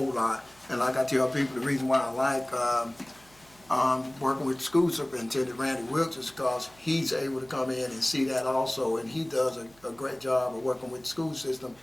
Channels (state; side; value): noise; right; hum, 28 dB below the sound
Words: lot. And like I tell people, the reason why I like working with school superintendent Randy Wilkes is because he's able to come in and see that also, and he does a great job of working with the school system